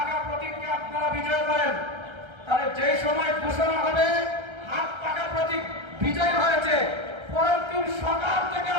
প্রতীককে আপনারা বিজয় করেন, তাহলে যেই সময় ঘোষণা হবে হাত পাকা প্রতীক বিজয় হয়েছে, পরের দিন সকাল থেকে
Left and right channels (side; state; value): left; late; 1.3 ms